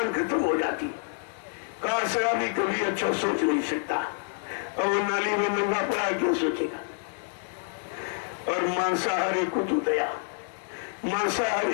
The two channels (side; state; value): right; silent; 59 dB below the other